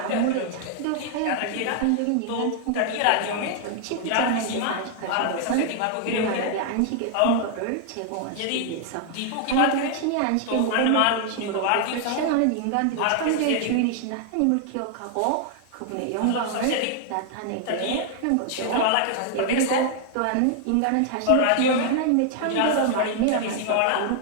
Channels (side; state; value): both; different; correlation 0.00